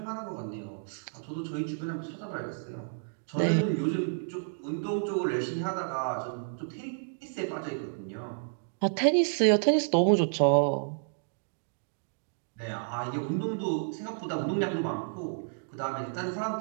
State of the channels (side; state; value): left; silent; digital silence